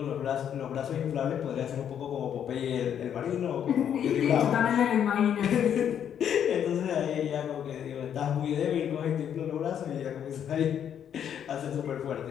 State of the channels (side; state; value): right; quieter; 9.0 dB